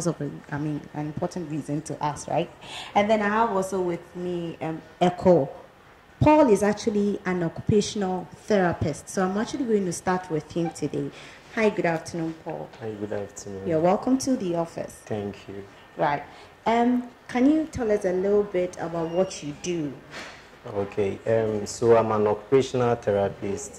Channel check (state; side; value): identical; both; correlation 1.00